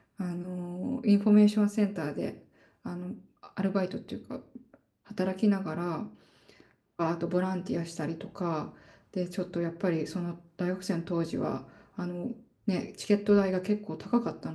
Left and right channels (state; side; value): identical; both; correlation 1.00